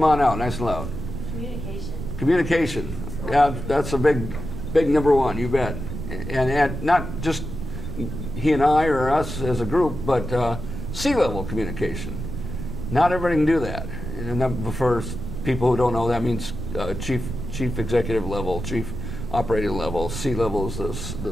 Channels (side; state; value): right; noise; rumble, 7 dB below the sound